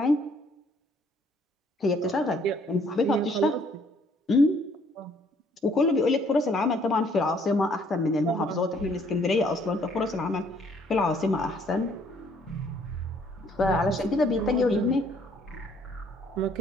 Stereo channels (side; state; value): both; normal; correlation 0.63